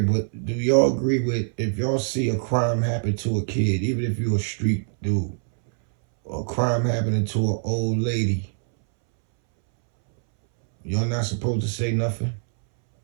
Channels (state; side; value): silent; left; 63 dB below the other